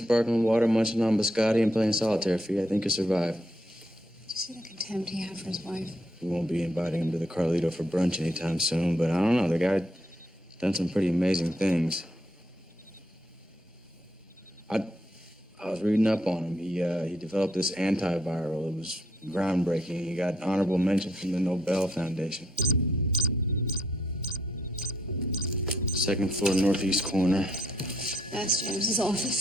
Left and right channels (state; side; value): normal; both; correlation 0.74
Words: water, munching on biscotti, and playing solitaire, Fee. I think you'll survive. Did you see the contempt he had for his wife? We won't be inviting him to the Carlito for brunch anytime soon, but I don't know. The guy's done some pretty amazing things. I was reading up on him. He developed this antiviral. It was groundbreaking. He got honorable mention from the Nobel Foundation. Second floor, northeast corner. That's James's